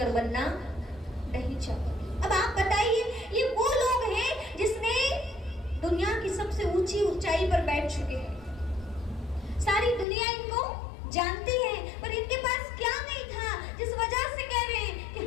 बनना नहीं चाहूंगी। अब आप बताइए, ये वो लोग हैं जिसने दुनिया की सबसे ऊंची ऊंचाई पर बैठ चुके हैं, सारी दुनिया इनको जानती है, पर इनके पास क्या नहीं था जिस वजह से कह रहे हैं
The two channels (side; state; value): right; drops out; at 10.1 s